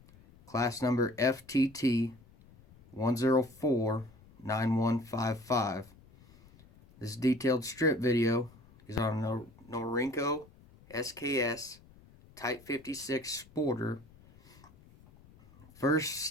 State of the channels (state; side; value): noise; left; rumble, 25 dB below the sound